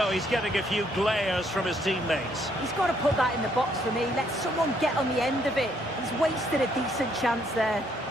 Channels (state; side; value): normal; both; correlation 0.69